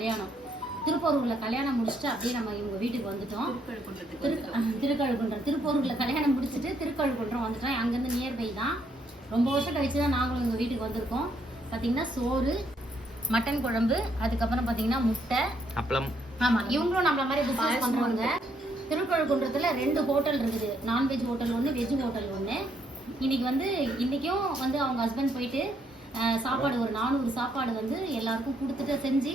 திருப்பூரூரில் கல்யாணம் முடிச்சுட்டு அப்படியே நம்ம இவங்க வீட்டுக்கு வந்துட்டோம். திருக்கழுக்குன்றம் திருப்பூரூரில் கல்யாணம் முடிச்சுட்டு திருக்கழுக்குன்றம் வந்துட்டோம். அங்கேருந்து நியர்பை தான். ரொம்ப வருஷம் கழிச்சு தான் நாங்களும் எங்கள் வீட்டுக்கு வந்திருக்கோம். பார்த்தீங்கன்னா சோறு, மட்டன் குழம்பு, அதுக்கப்புறம் பார்த்தீங்கன்னா முட்டை, அப்பளம். ஆமாம், இவங்களும் நம்மள மாதிரி பிஸ்னஸ் பண்ணுறவங்க. திருக்கழுக்குன்றத்தில் 2 ஹோட்டல் இருக்குது. நான்வெஜ் ஹோட்டல் ஒன்று, வெஜ் ஹோட்டல் ஒன்று. இன்றைக்கும் அவங்க ஹஸ்பண்ட் போயிட்டு சாப்பாடு ஒரு 400 சாப்பாடு எல்லாருக்கும் கொடுத்துட்டு செஞ்சு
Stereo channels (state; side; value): normal; both; correlation 0.72